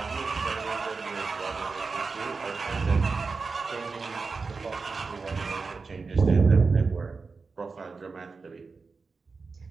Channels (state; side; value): quieter; left; 4.5 dB